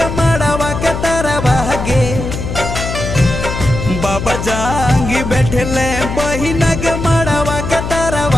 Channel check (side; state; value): left; noise; hum, 5 dB below the sound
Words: मड़वा के तरवा गे। बाबा जांगी बैठले बहिना के मड़वा के